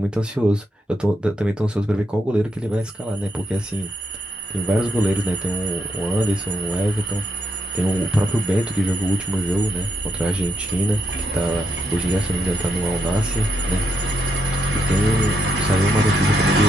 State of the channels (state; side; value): normal; both; correlation 0.79